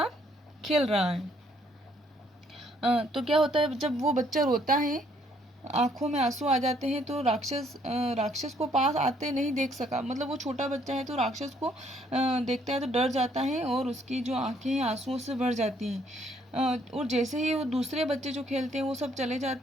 खेल रहा है। तो क्या होता है, जब वो बच्चा रोता है, आंखों में आंसू आ जाते हैं, तो राक्षस को पास आते नहीं देख सका। मतलब वो छोटा बच्चा है तो राक्षस को देखता है तो डर जाता है और उसकी जो आंखें हैं आंसुओं से भर जाती हैं। और जैसे ही वो दूसरे बच्चे जो खेलते हैं वो सब चले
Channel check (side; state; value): both; normal; correlation 0.66